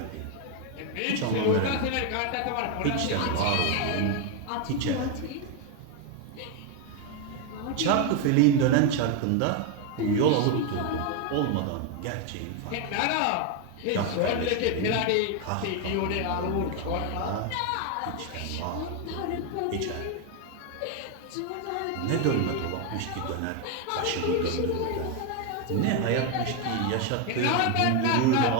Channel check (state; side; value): different; both; correlation 0.01